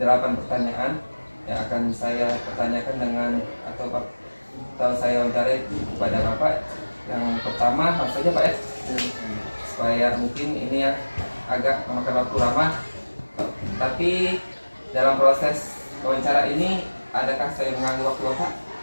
pertanyaan yang akan saya pertanyakan dengan atau saya wawancarai kepada Bapak. Yang pertama, langsung saja Pak ya, supaya mungkin ini ya agak memakan waktu lama. Tapi dalam proses wawancara ini, adakah saya mengganggu waktu Bapak?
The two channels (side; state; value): both; inverted; correlation -1.00